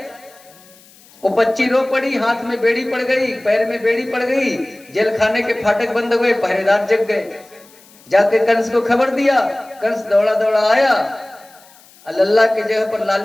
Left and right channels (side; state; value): left; noise; hiss, 26 dB below the sound